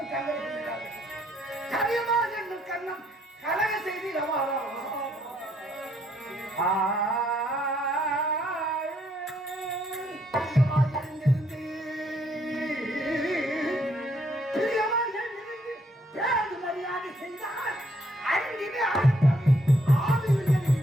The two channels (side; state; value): both; normal; correlation 0.70